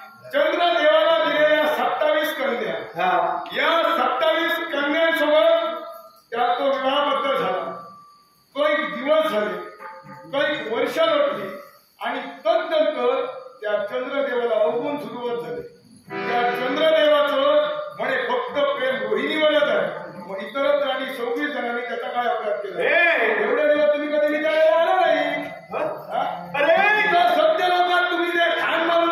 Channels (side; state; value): both; identical; correlation 1.00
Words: चंद्रदेवाला दिलेल्या 27 कन्या, या 27 कन्यांसोबत त्या तो विवाहबद्ध झाला. काही दिवस झाले, काही वर्ष लोटली आणि तदनंतर त्या चंद्रदेवाला अवगुण सुरुवात झाली. त्या चंद्रदेवाचं म्हणे फक्त प्रेम रोहिणीवरच आहे. मग इतरत्र आणि 26 जणांनी त्याचा काय अपराध केला? एवढे दिवस तुम्ही कधी विचारायला आला नाही. अरे सत्य लोकात तुम्ही जे खान